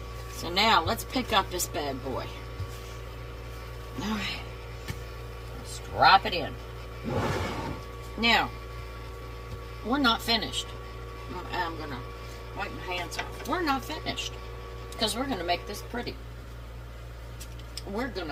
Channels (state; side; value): identical; both; correlation 1.00